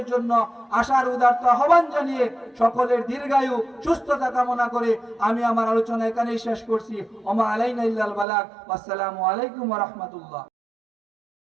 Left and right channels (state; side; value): drops out; left; at 8.2 s